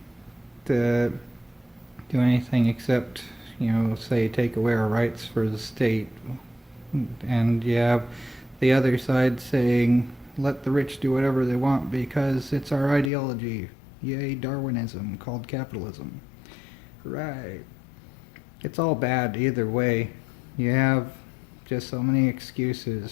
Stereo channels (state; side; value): drops out; right; at 13.1 s